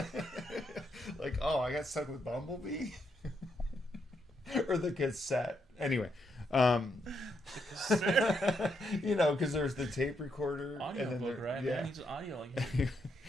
Like, oh, I got stuck with Bumblebee. Or the cassette. Anyway, you know, because there's the tape recorder, audio and then book, right? Yeah, man, he's audio like.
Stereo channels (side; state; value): both; normal; correlation 0.78